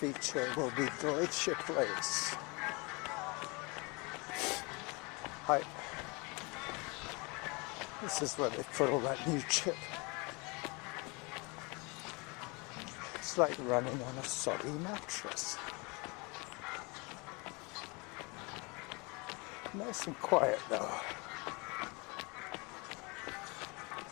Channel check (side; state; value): right; quieter; 28.5 dB